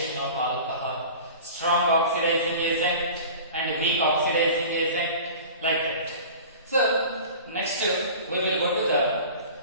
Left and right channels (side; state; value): both; inverted; correlation -0.39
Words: of alcohol, strong oxidizing agent and weak oxidizing agent, like that. So next we will go to the